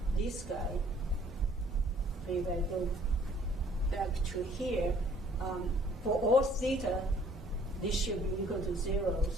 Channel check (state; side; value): normal; both; correlation 0.59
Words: this guy. If I go back to here, for all theta, this should be equal to 0.